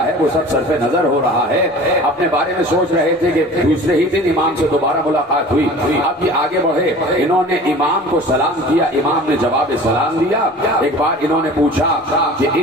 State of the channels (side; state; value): both; normal; correlation 0.42